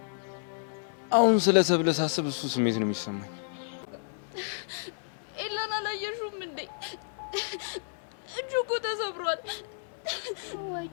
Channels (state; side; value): silent; right; digital silence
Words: አሁን ስለ ሰብለ ሳስብ እሱ ስሜት ነው የሚሰማኝ። ኤላን አላየሽውም እንዴ? እጁ እኮ ተሰብሯል።